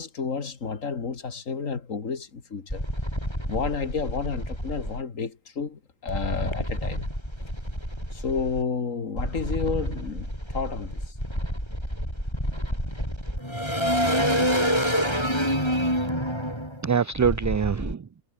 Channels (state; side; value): late; right; 1.3 ms